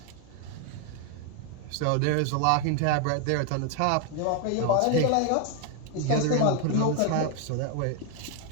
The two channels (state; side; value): different; both; correlation 0.01